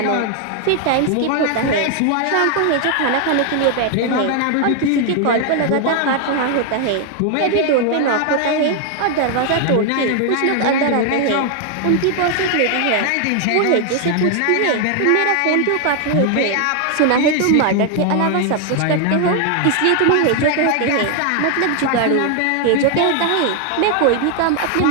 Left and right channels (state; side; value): different; both; correlation 0.00